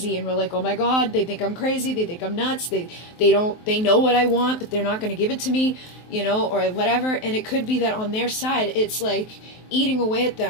and were like, oh my god, they think I'm crazy, they think I'm nuts, they know what I want, but they're not going to give it to me, you know, or whatever. And it could be that on their side it's like eating away at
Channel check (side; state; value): right; late; 23 ms